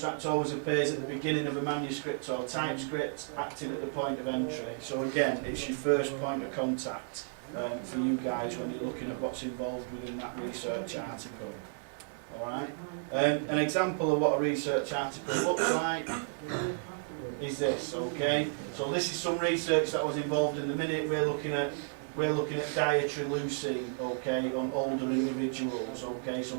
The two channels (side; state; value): left; silent; digital silence